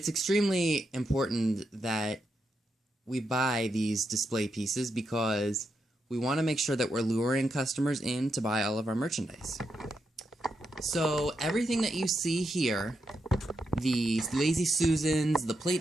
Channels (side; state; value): both; normal; correlation 0.84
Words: extremely important that we buy these display pieces because we want to make sure that we're luring customers in to buy all of our merchandise. So everything that you see here, the Lazy Susans, the